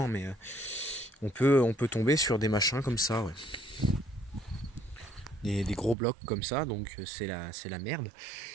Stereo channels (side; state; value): left; drops out; at 6.0 s